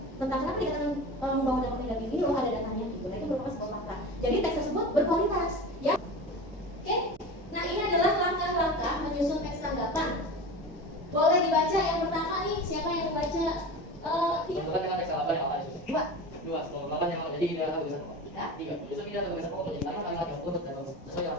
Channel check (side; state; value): right; noise; hum, 27 dB below the sound